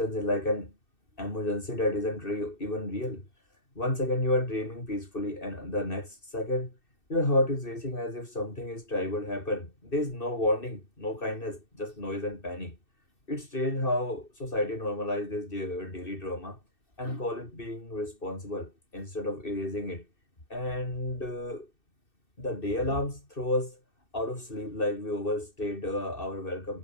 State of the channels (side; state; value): right; late; 2.6 ms